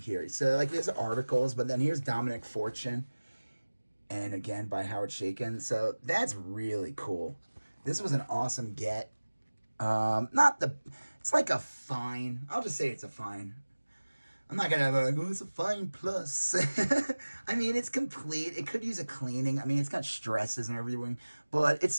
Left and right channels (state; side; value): inverted; both; correlation -1.00